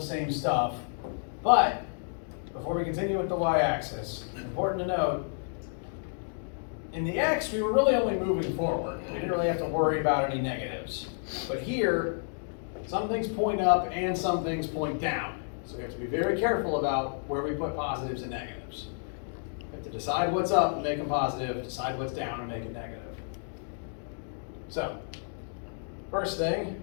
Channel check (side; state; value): right; silent; digital silence